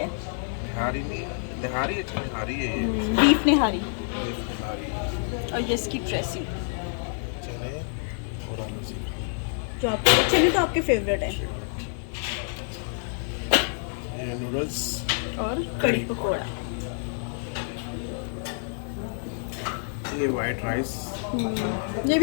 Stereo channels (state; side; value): silent; right; 60 dB below the other